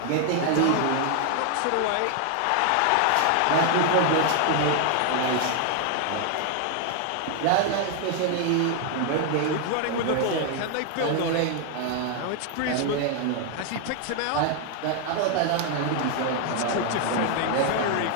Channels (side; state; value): both; different; correlation 0.00